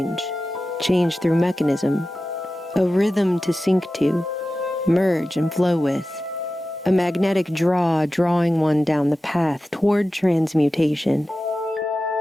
through mechanism, a rhythm to sync to, merge and flow with, a magnetic draw drawing one down the path toward transmutation.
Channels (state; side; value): normal; both; correlation 0.94